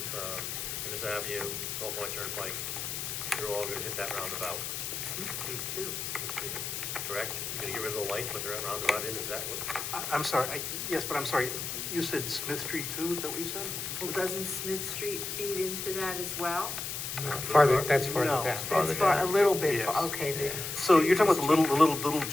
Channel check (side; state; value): left; noise; hiss, 4 dB below the sound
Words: Innis Avenue, Salt Point Turnpike. You're all gonna hit that roundabout, Smith Street too. the street, correct? You're gonna get rid of the light, put the roundabout in, is that what? I'm sorry, yes, but I'm sorry, you said Smith Street too, is that what you said? Well, doesn't Smith Street feed into that as well? Farther, that's farther No. down. That's far, a little bit, Yes. okay, So you're talking about the little